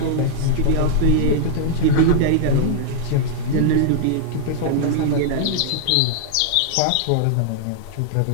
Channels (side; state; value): both; different; correlation -0.01